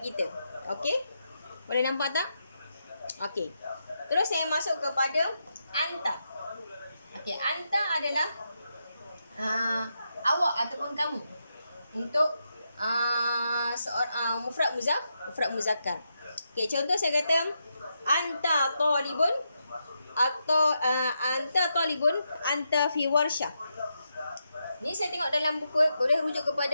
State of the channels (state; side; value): inverted; both; correlation -0.84